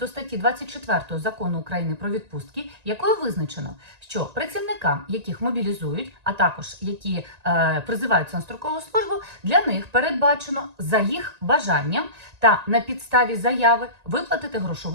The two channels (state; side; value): late; left; 1.9 ms